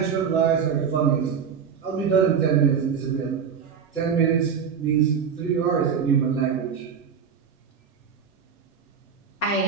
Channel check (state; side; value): quieter; left; 6.9 dB